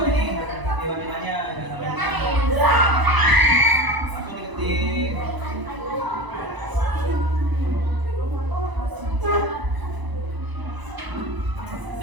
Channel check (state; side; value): late; left; 1.0 ms